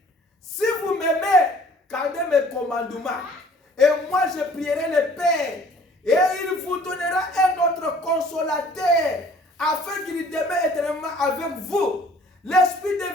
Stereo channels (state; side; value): normal; both; correlation 0.54